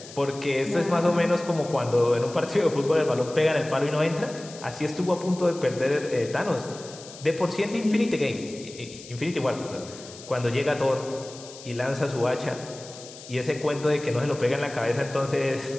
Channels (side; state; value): left; noise; hiss, 16 dB below the sound